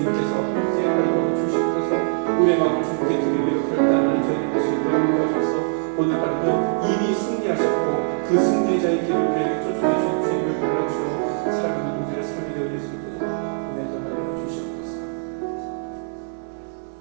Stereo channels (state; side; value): silent; left; 63 dB below the other